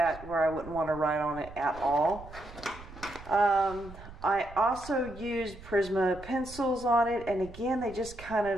where I wouldn't want to write on it at all. I also used Prisma pencils on it, and again, they just kind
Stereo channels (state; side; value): noise; right; rumble, 16 dB below the sound